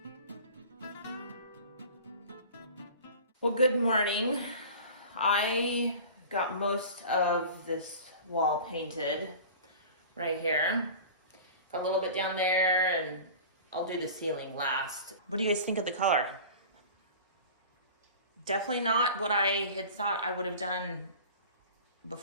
well, good morning. I got most of this wall painted right here. Got a little bit down there, and I'll do the ceiling last. What do you guys think of the color? Definitely not what I had thought I would have done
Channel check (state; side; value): inverted; both; correlation -0.39